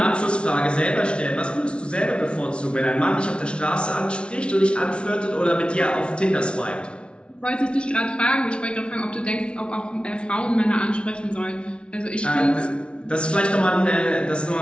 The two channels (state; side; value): late; right; 0.058 ms